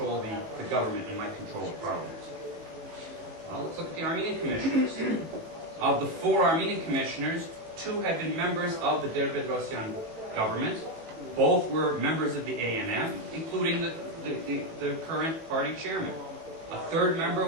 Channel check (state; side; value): late; left; 18 ms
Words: the government and might control the parliament. Well, let's look at the Armenian commissioners. Of the 4 Armenian commissioners, 2 had been members of the Derbedrosyan government. Both were members of the ANM, including the current party chairman. A 3rd member